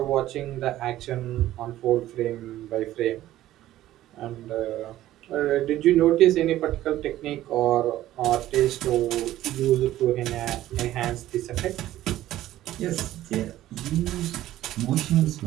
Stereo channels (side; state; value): left; quieter; 14.2 dB